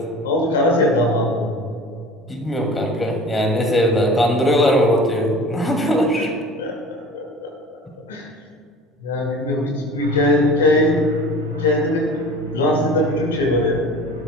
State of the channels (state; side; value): normal; both; correlation 0.40